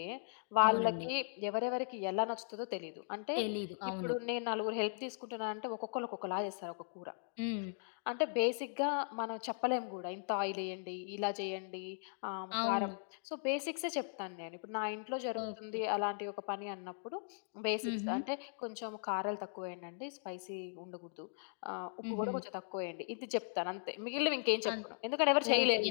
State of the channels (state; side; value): silent; right; digital silence